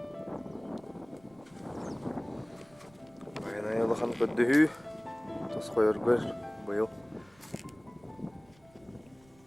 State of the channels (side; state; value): right; noise; rumble, 28 dB below the sound